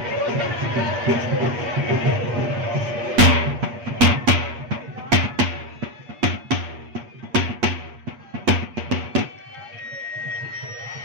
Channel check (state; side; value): late; left; 8.4 ms